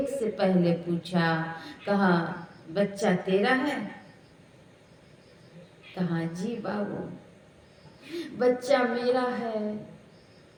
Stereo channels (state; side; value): identical; both; correlation 1.00